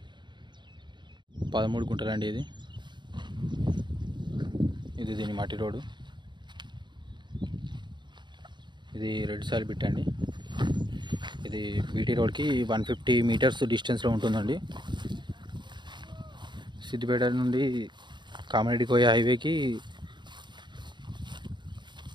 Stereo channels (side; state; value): left; late; 0.22 ms